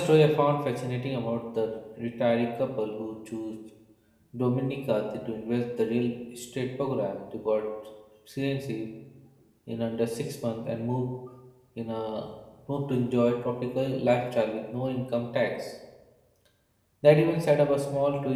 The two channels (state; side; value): identical; both; correlation 1.00